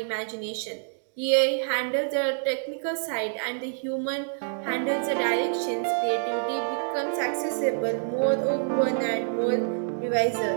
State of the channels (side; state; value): left; silent; digital silence